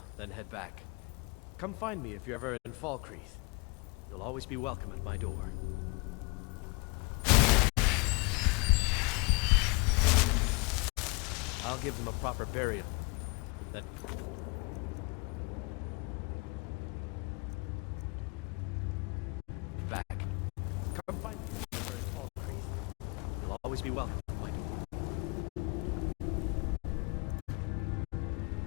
then head back. Come find me if you're ever in Falkreath. You'll always be welcome at my door. I'll give them a proper burial, then... back. Come find me if you're ever in Falkreath. You'll always be welcome at my door.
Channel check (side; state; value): right; quieter; 29.6 dB